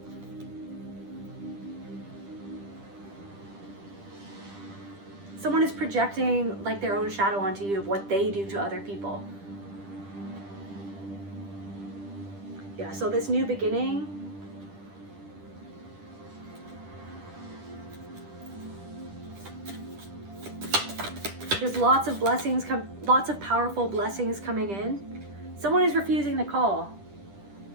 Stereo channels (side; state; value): left; late; 10 ms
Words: someone is projecting like their own shadow onto you of what they do to other people. Yeah, so this new beginning, there's lots of blessings, lots of powerful blessings coming in. Someone is refusing the call.